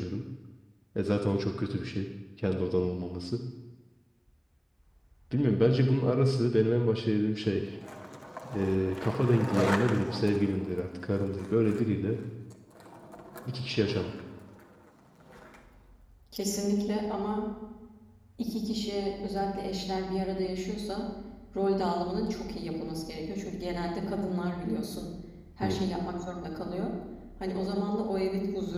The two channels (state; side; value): identical; both; correlation 1.00